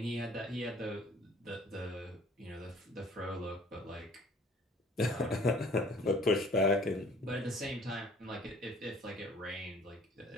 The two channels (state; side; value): normal; both; correlation 0.54